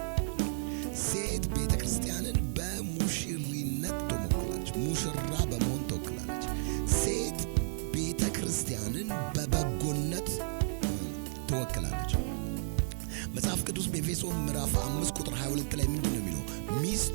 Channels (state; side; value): silent; left; digital silence